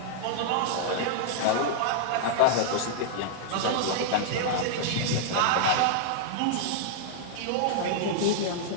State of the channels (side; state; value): both; different; correlation -0.01